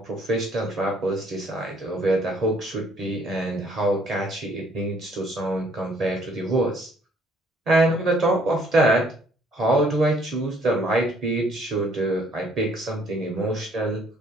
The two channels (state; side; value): normal; both; correlation 0.63